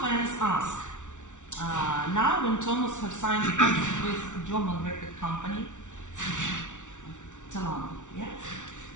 fans ask, now when Thomas has signed a contract with a German record company, Svetlana, yeah?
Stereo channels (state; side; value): late; right; 0.86 ms